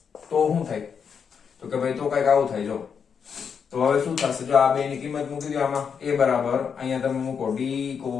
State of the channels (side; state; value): right; quieter; 6.7 dB